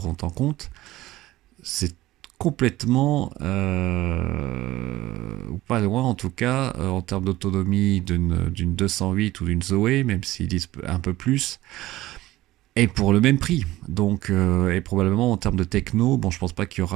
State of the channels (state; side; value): quieter; left; 16.8 dB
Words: en compte. C'est complètement, ou pas loin en tout cas, en termes d'autonomie d'une 208 ou d'une Zoé, même s'ils disent un peu plus. Et pour le même prix. Donc, et probablement en termes de techno, bon, je pense pas qu'il y